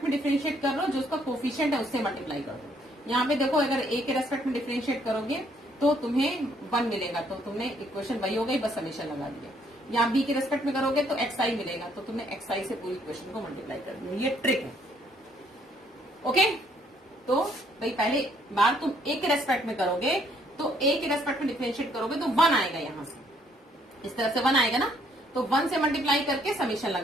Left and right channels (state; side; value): normal; both; correlation 0.67